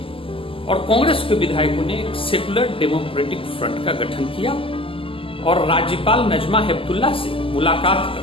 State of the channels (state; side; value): late; right; 0.26 ms